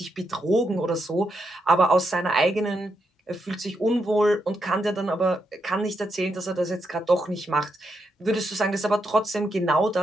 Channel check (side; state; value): both; normal; correlation 0.82